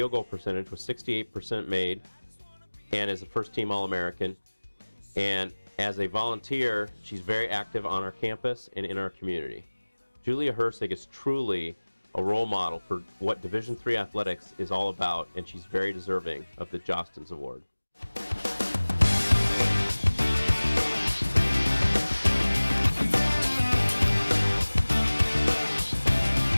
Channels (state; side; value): inverted; both; correlation -1.00